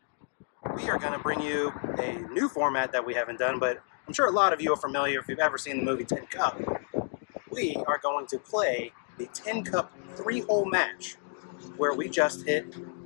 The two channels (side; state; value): right; silent; 58 dB below the other